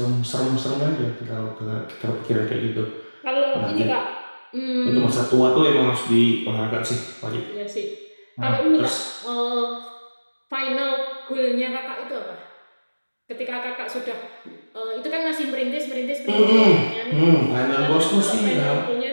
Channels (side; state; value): both; inverted; correlation -1.00